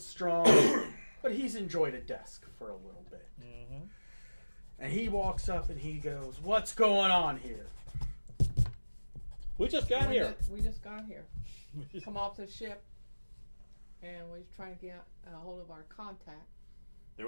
but he's enjoyed a desk for a little bit. Mm-hmm. And he walks up and he goes, "What's going on here?" We just got here. We just got here. Come off the ship, and we're trying to get a hold of our contact. There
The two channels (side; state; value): both; inverted; correlation -1.00